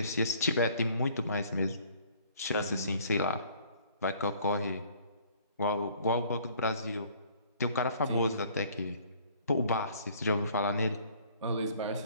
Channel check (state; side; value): inverted; both; correlation -0.57